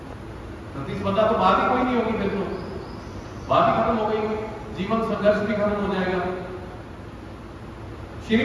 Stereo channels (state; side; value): identical; both; correlation 1.00